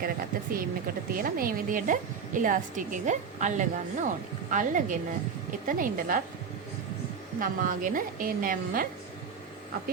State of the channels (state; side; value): quieter; left; 6.2 dB